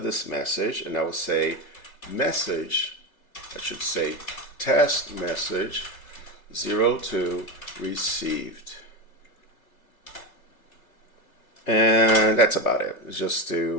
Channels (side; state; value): right; late; 3.3 ms